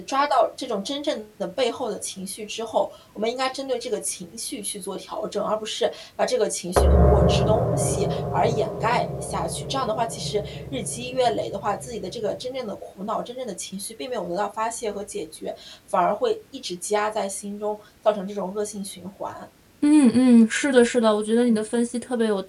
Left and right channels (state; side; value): identical; both; correlation 1.00